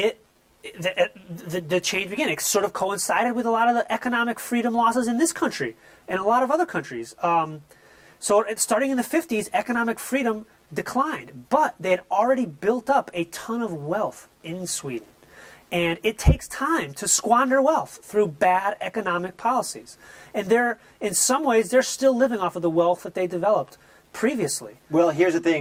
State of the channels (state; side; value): identical; both; correlation 1.00